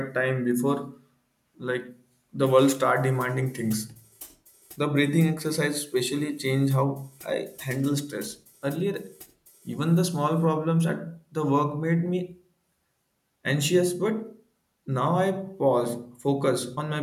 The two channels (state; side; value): identical; both; correlation 1.00